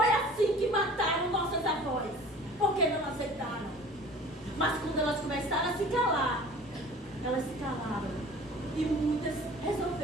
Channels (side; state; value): both; normal; correlation 0.45